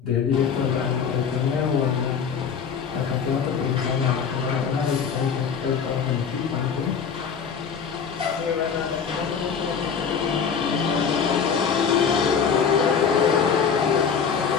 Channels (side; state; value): right; quieter; 6.6 dB